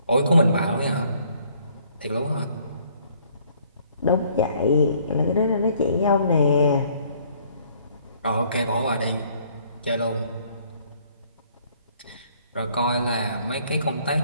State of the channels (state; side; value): inverted; both; correlation -0.62